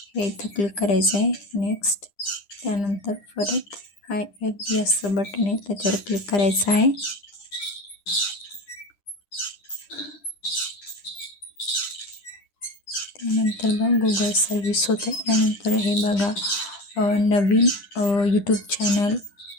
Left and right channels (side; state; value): right; late; 9.9 ms